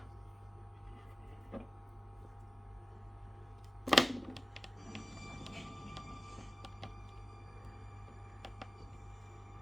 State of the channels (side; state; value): both; normal; correlation 0.96